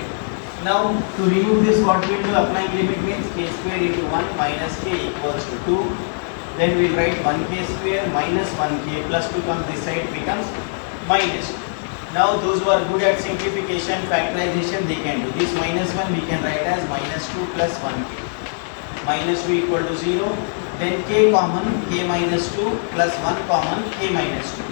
Now to remove this, what we will do, applying limit means k square into 1 minus k equals to 2. Then we will write 1k square minus 1k plus 2 comes this side, becomes minus 2. Now those who are good at simplification, factorization, they can do this. Minus 1 we can write as minus 2 plus 1k. Minus 2 equal to 0. Then k common, k minus 2 plus 1 common, k minus 2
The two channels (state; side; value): silent; right; 59 dB below the other